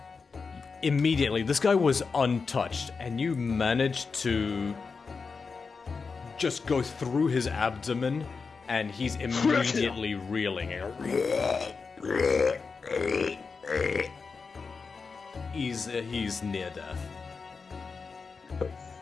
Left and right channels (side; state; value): right; quieter; 4.9 dB